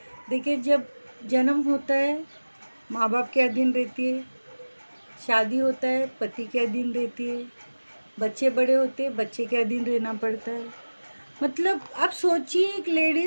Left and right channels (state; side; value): inverted; both; correlation -1.00